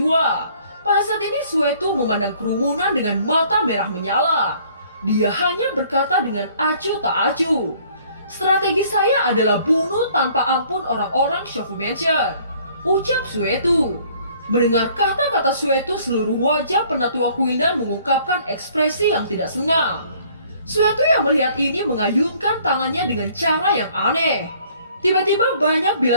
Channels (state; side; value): inverted; both; correlation -0.58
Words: Pada saat ini Suetu memandang kerumunan dengan mata merah menyala. Dia hanya berkata dengan acuh tak acuh, Strategi saya adalah bunuh tanpa ampun orang-orang Shofu Mansion, ucap Suetu. Mendengar kata-kata Suetu, seluruh wajah penatua Quildan mengungkapkan ekspresi yang tidak senang. Suetu yang melihat ini mengayunkan tangannya dengan cara yang aneh. Tiba-tiba banyak